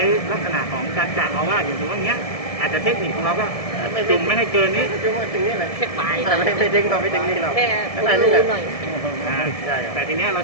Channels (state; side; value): late; right; 1.7 ms